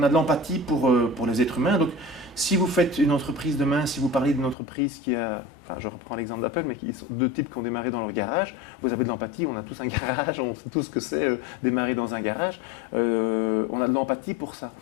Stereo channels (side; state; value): right; drops out; at 4.5 s